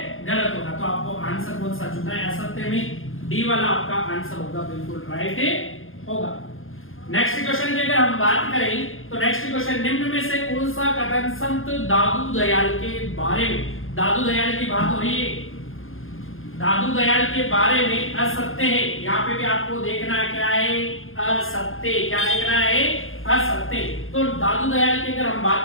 गलत होगा। तो आपको आंसर कौन सा चुनना है, असत्य में डी वाला आपका आंसर होगा, बिल्कुल राइट होगा। नेक्स्ट क्वेश्चन की अगर हम बात करें तो नेक्स्ट क्वेश्चन, निम्न में से कौन सा कथन संत दादू दयाल के बारे में, दादू दयाल की बात हो रही है, दादू दयाल के बारे में असत्य है। यहाँ पे भी आपको देखना है क्या है, असत्य। क्या देखना है, असत्य। तो दादू दयाल की अगर हम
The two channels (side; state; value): right; late; 0.60 ms